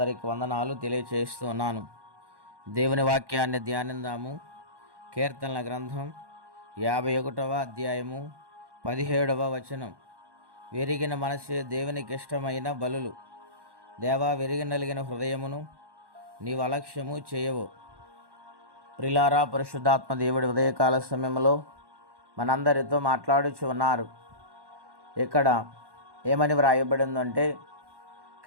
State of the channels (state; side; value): late; left; 1.1 ms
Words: వందనాలు తెలియచేస్తున్నాను. దేవుని వాక్యాన్ని ధ్యానిందాము. కీర్తనల గ్రంథం 51వ అధ్యాయము 17వ వచనం. విరిగిన మనసే దేవునికి ఇష్టమైన బలులు. దేవా, విరిగి నలిగిన హృదయమును నీవు అలక్ష్యము చేయవు. ప్రియులారా, పరిశుద్ధాత్మ దేవుడి ఉదయకాల సమయంలో మనందరితో మాట్లాడుచు ఉన్నారు. ఇక్కడ ఏమని వ్రాయబడిందంటే,